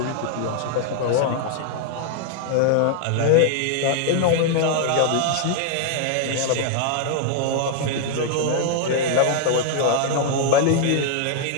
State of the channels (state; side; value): different; both; correlation 0.00